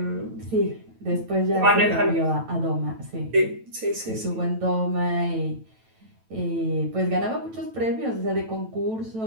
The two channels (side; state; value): left; late; 9.1 ms